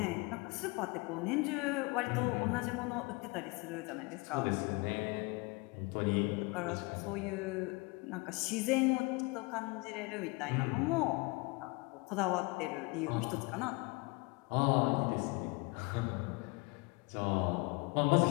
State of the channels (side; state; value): right; quieter; 27.0 dB